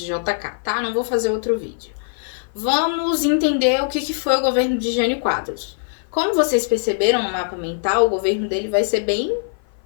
JK, tá? Não vou fazer outro vídeo. Vamos entender o que foi o governo de Jânio Quadros. Como vocês perceberam no mapa mental, o governo dele vai ser bem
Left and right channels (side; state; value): right; silent; 55 dB below the other